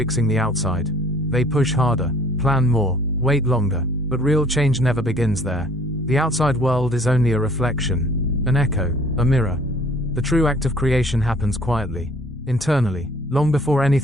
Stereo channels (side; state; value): both; normal; correlation 0.55